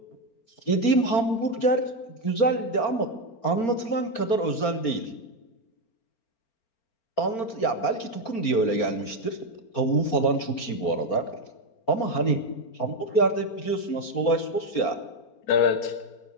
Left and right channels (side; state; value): right; late; 4.4 ms